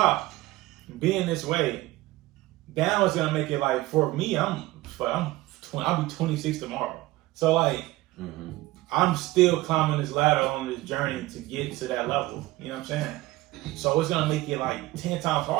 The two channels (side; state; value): left; quieter; 18.5 dB